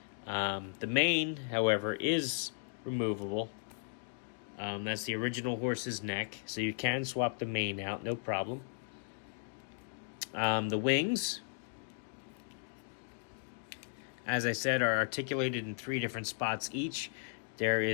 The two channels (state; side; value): silent; right; digital silence